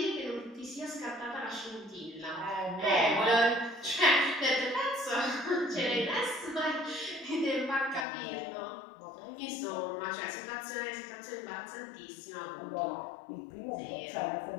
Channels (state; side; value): drops out; right; at 8.1 s